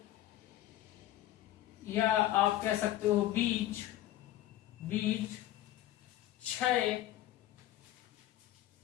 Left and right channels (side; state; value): right; quieter; 14.0 dB